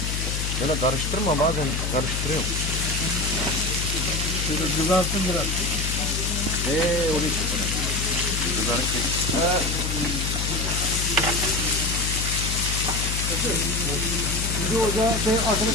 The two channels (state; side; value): noise; left; hum, 2 dB below the sound